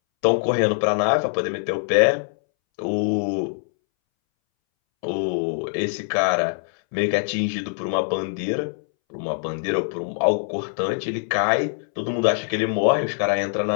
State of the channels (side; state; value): right; silent; 63 dB below the other